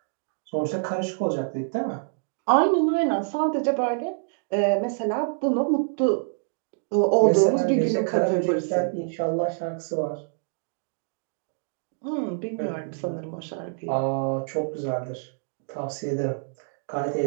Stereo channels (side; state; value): left; silent; digital silence